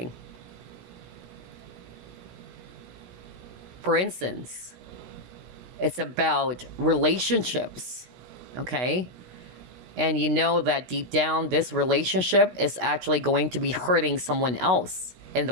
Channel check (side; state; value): left; late; 16 ms